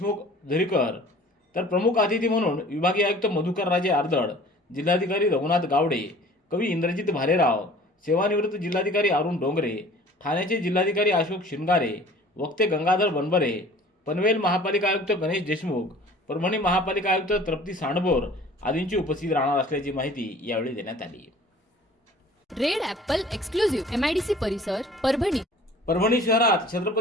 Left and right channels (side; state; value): both; normal; correlation 0.48